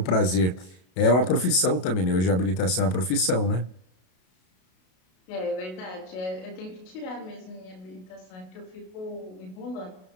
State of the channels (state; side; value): late; right; 32 ms